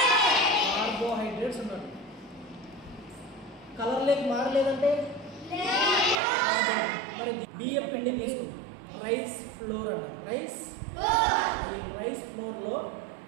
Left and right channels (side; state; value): left; drops out; at 6.2 s